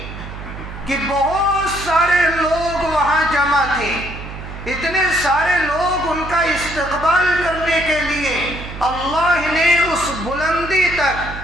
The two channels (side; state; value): right; noise; hum, 11 dB below the sound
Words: کہ بہت سارے لوگ وہاں جمع تھے، اتنے سارے لوگ ان کا استقبال کرنے کے لیے اللہ نے اس بلندی